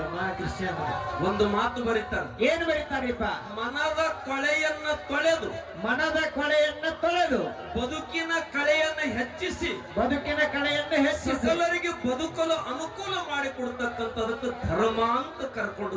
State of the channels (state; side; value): identical; both; correlation 1.00